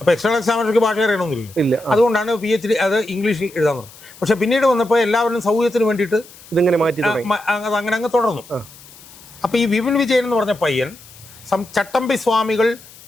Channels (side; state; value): left; noise; hiss, 21 dB below the sound